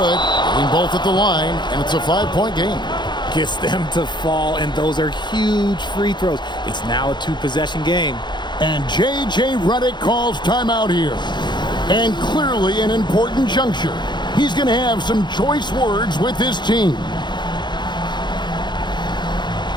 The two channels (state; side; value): late; right; 0.21 ms